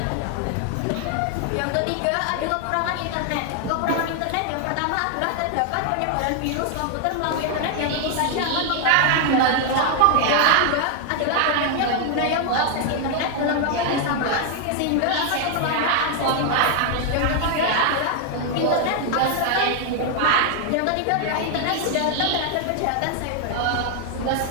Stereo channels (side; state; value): both; different; correlation 0.00